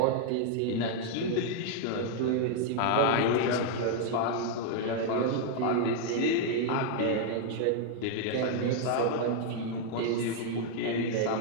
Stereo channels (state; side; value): different; both; correlation 0.00